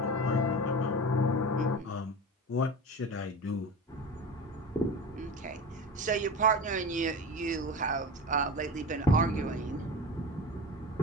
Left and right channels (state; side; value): normal; both; correlation 0.30